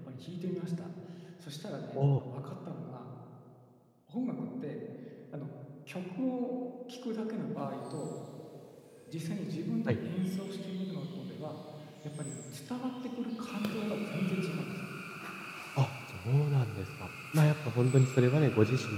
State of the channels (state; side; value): identical; both; correlation 1.00